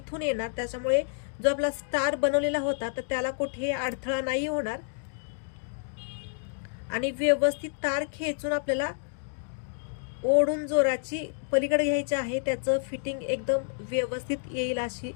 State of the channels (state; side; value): silent; right; digital silence